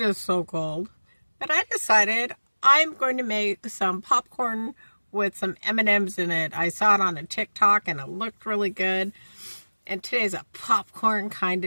so cold. But I decided I'm going to make some popcorn with some M&Ms in it. I saw it on a TikTok and it looked really good. And today's a popcorn kind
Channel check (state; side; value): inverted; both; correlation -1.00